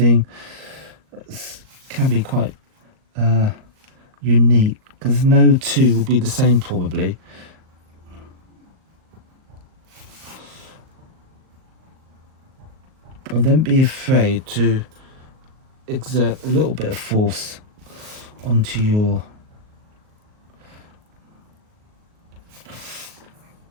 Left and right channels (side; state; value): left; late; 38 ms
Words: that can be quite unique, because no two will be the same probably. And don't be afraid to exert a little bit of force onto your